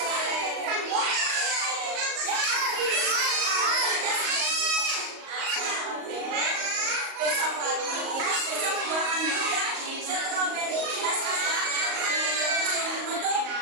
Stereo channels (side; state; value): left; late; 38 ms